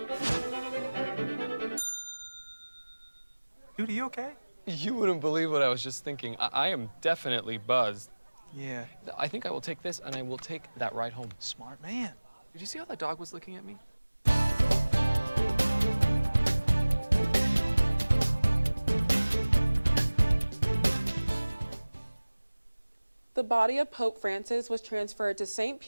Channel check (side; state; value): both; inverted; correlation -1.00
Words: Dude, are you okay? You wouldn't believe what I was just thinking. I am definitely buzzed. Yeah. I think I will take this, and I will take that ride home. Smart man. Did you see how that dog was looking at me? The body of Pope Francis was transferred to St.